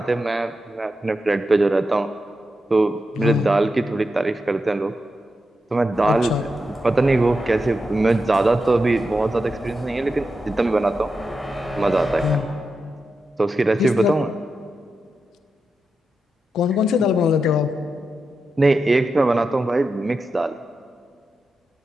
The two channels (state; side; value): normal; both; correlation 0.88